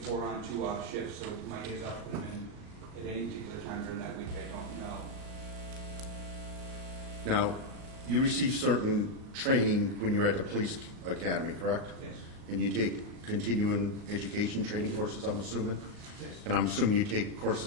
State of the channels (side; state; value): left; late; 38 ms